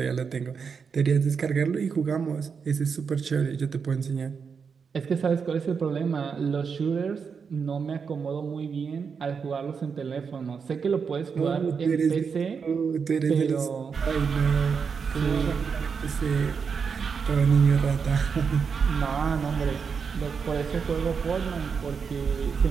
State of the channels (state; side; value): quieter; left; 6.0 dB